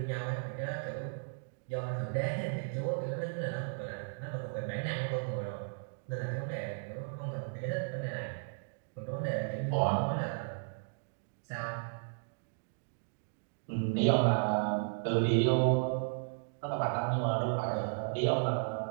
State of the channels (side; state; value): left; silent; digital silence